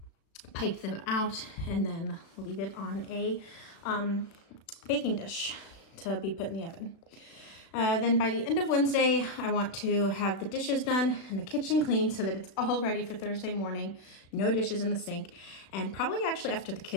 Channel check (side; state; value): right; late; 36 ms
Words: pipe them out, and then leave it on a baking dish to be put in the oven. Then by the end of Wednesday, I want to have the dishes done and the kitchen clean so that it's all ready for Thursday morning. No dishes in the sink. And probably actually after the